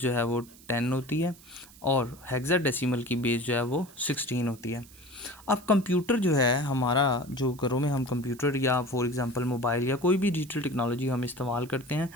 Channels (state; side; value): noise; right; hiss, 22 dB below the sound